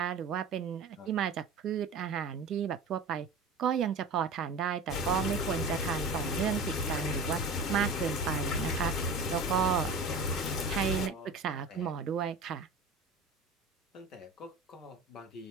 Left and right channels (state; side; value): quieter; left; 3.3 dB